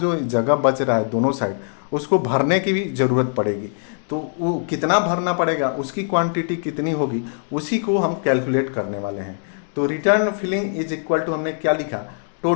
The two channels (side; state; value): right; silent; digital silence